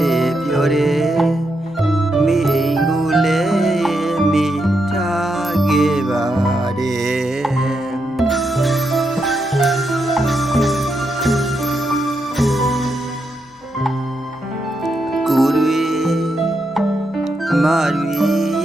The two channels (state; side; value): normal; both; correlation 0.82